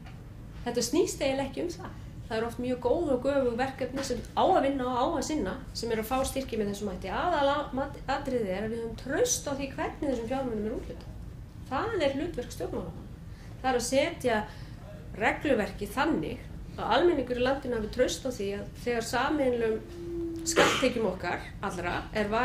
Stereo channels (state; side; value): identical; both; correlation 1.00